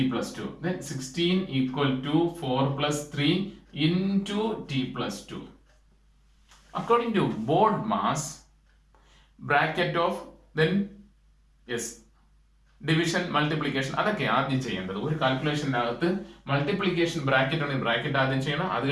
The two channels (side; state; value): both; identical; correlation 1.00